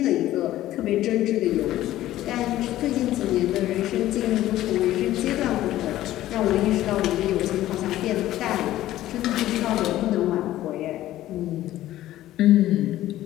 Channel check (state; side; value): quieter; right; 14.3 dB